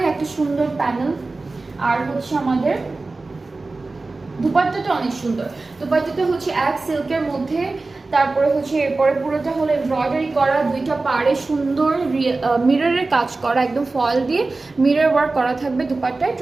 একটা সুন্দর প্যানেল। আর হচ্ছে আমাদের দুপাট্টাটা অনেক সুন্দর, দুপাট্টাটা হচ্ছে এক সিল্কের মধ্যে, তারপরে হচ্ছে এরপরে পুরোটা হলো এমব্রয়ডারি করা, দুইটা পাড়ে সুন্দর মিররের কাজ করা, একদম ফয়েল দিয়ে মিরর ওয়ার্ক করা থাকবে দুপাট্টায়।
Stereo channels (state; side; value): quieter; left; 3.5 dB